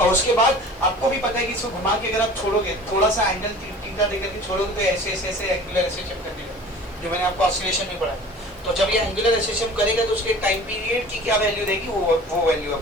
उसके बाद आपको भी पता है कि इसको घुमा के अगर आप छोड़ोगे, थोड़ा सा एंगल थीटा देकर के छोड़ोगे तो ऐसे एंगुलर एसेशन कर देगा, जो मैंने आपको ऑसिलेशन में पढ़ा। तो जब ये एंगुलर एसेशन करेगा तो उसके टाइम पीरियड की क्या वैल्यू रहेगी, वो वैल्यू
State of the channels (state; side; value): normal; both; correlation 0.42